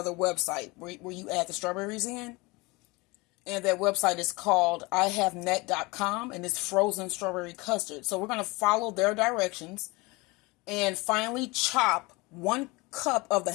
website where you add the strawberries in. And that website is called ihavenet.com, and it's frozen strawberry custard. So we're going to follow their directions and finally chop 1 cup of the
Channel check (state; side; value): quieter; right; 24.6 dB